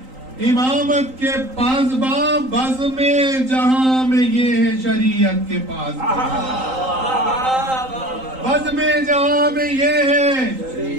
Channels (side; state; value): left; late; 3.8 ms